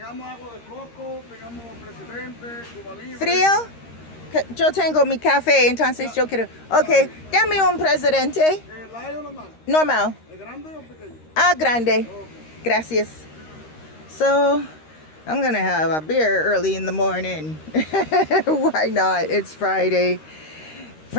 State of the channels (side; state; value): right; late; 13 ms